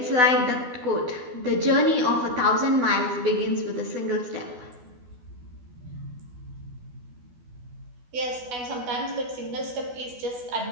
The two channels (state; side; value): late; left; 12 ms